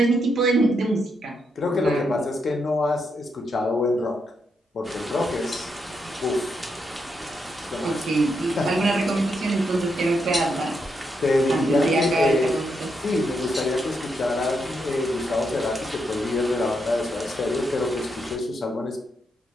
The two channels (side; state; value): both; normal; correlation 0.81